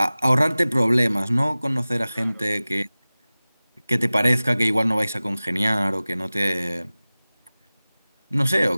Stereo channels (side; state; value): both; inverted; correlation -0.98